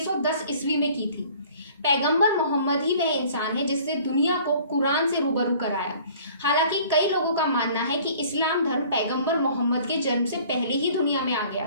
ईस्वी में की थी। पैगंबर मोहम्मद ही वह इंसान है जिसने दुनिया को कुरान से रूबरू कराया। हालांकि कई लोगों का मानना है कि इस्लाम धर्म पैगंबर मोहम्मद के जन्म से पहले ही दुनिया में आ गया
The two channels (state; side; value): inverted; both; correlation -0.51